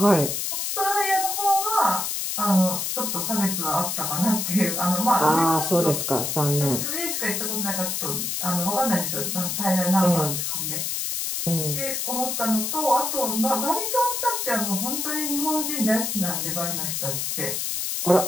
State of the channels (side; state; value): left; noise; hiss, 1 dB below the sound